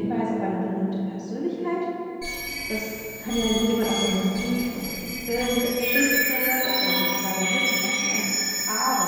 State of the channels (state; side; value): identical; both; correlation 1.00